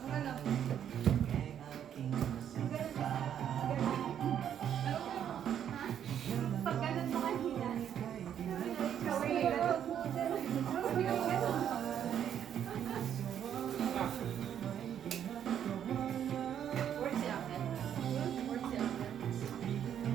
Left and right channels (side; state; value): left; quieter; 9.4 dB